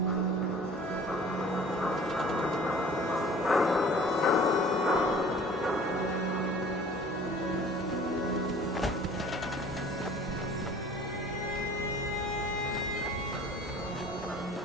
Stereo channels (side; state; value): both; normal; correlation 0.48